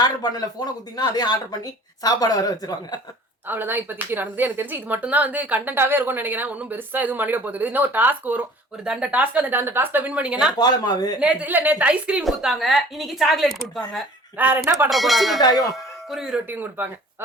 ஆர்டர் பண்ணல, போனை குத்தீங்கன்னா அதே ஆர்டர் பண்ணி சாப்பாடு வர வச்சிருவாங்க. அவ்வளவுதான் இப்போதைக்கு நடந்தது. எனக்கு தெரிஞ்சு இது மட்டும் தான் வந்து கண்டென்ட்டாவே இருக்கும்னு நினைக்கிறேன். ஒன்னும் பெருசா எதுவும் பண்ணிட போகுது. இன்னும் ஒரு டாஸ்க் வரும், ஒரு தண்ட டாஸ்க். அந்த டாஸ்க்ல வின் பண்ணீங்கன்னா கோலமாவு, நேத்து ஐஸ்கிரீம் கொடுத்தாங்க, இன்னைக்கு சாக்லேட் கொடுப்பாங்க. வேற என்ன பண்ற போறாங்க, குருவி ரொட்டியும் கொடுப்பாங்க.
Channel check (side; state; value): both; normal; correlation 0.49